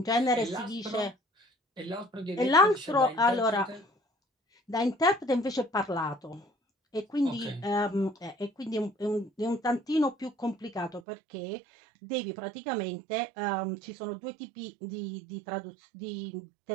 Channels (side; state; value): left; drops out; at 11.0 s